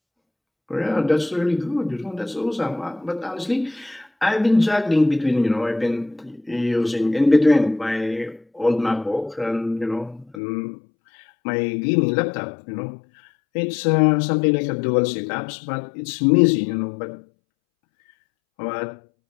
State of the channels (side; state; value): right; drops out; at 10.4 s